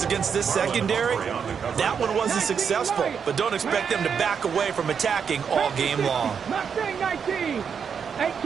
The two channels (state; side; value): quieter; left; 6.8 dB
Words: against this secondary. That one wasn't successful, but don't expect them to back away from attacking all game long. Mustang 19.